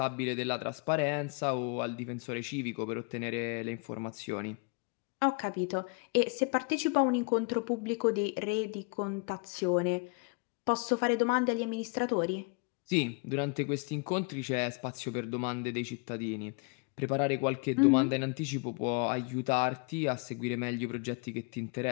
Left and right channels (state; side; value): quieter; right; 31.9 dB